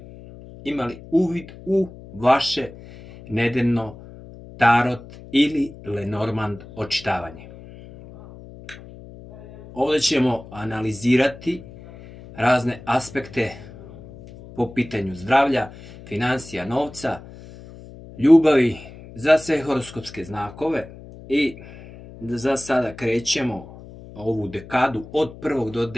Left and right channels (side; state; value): left; noise; hum, 18 dB below the sound